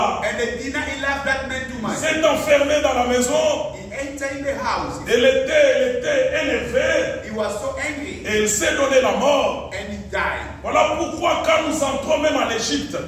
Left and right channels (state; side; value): identical; both; correlation 1.00